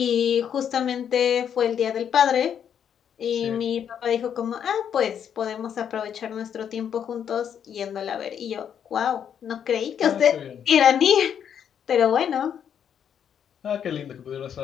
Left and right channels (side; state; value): right; quieter; 8.5 dB